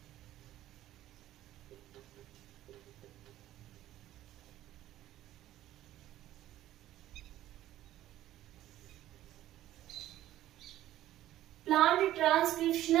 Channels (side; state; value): left; quieter; 13.8 dB